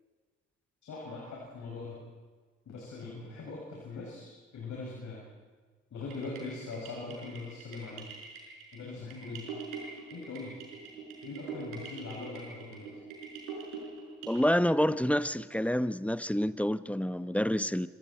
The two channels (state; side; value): normal; both; correlation 0.84